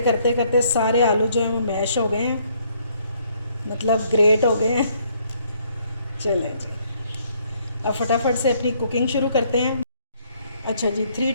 करते करते सारे आलू जो हैं वो मैश हो गए हैं, मतलब ग्रेट हो गए हैं। चलें जी अब फटाफट से अपनी कुकिंग शुरू करते हैं। अच्छा जी 3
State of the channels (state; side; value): inverted; both; correlation -0.67